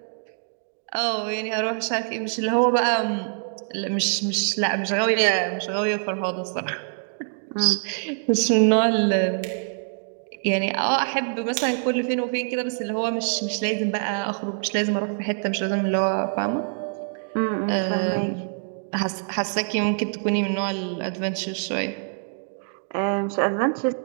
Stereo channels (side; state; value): left; silent; digital silence